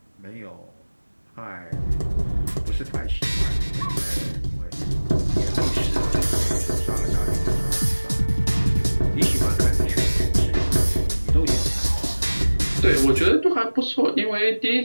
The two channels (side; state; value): both; inverted; correlation -1.00